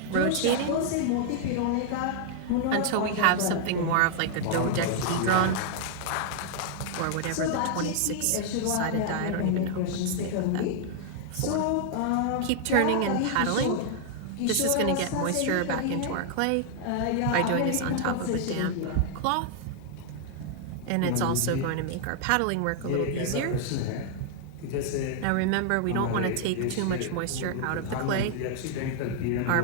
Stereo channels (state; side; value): different; both; correlation 0.00